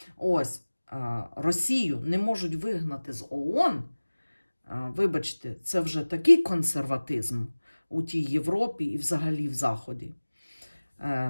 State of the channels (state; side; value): inverted; both; correlation -1.00